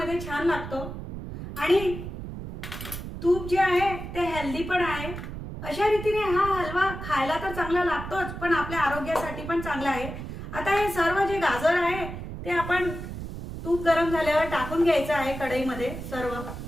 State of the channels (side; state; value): right; noise; rumble, 8 dB below the sound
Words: छान लागतो आणि तूप जे आहे ते हेल्दी पण आहे। अशा रीतीने हा हलवा खायला तर चांगला लागतोच, पण आपल्या आरोग्यासाठी पण चांगला आहे। आता हे सर्व जे गाजर आहे ते आपण तूप गरम झाल्यावर टाकून घ्यायचं आहे कढईमध्ये सर्व।